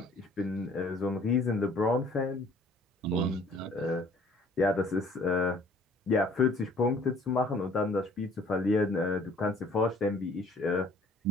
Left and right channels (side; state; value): both; normal; correlation 0.56